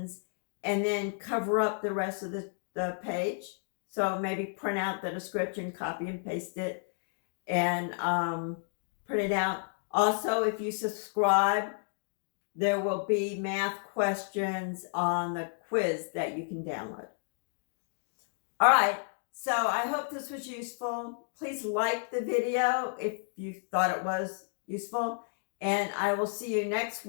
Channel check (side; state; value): right; silent; 57 dB below the other